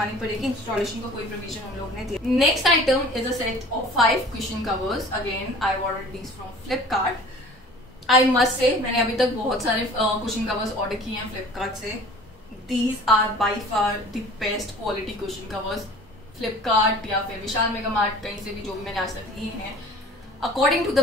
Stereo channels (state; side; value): normal; both; correlation 0.46